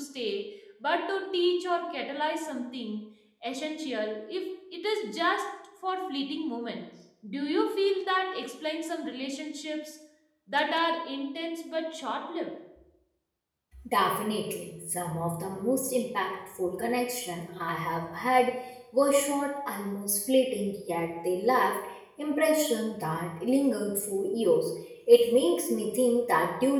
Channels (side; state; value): both; identical; correlation 1.00